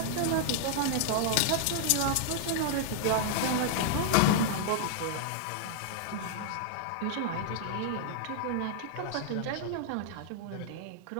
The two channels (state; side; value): different; both; correlation 0.00